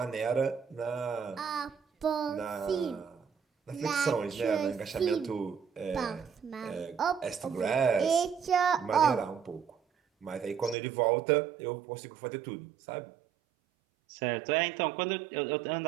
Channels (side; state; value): left; drops out; at 10.8 s